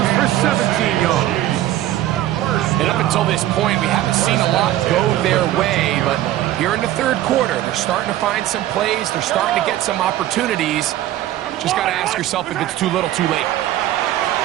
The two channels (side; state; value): left; quieter; 13.9 dB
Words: for 17 yards. And up until this point, we haven't seen a lot go their way, but Here in the third quarter, they're starting to find some plays. They're starting to get some opportunities. Just got to ask yourself if it's too little, too late.